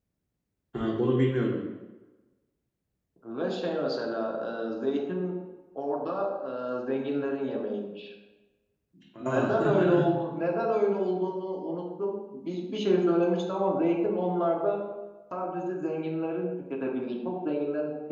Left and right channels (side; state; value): both; identical; correlation 1.00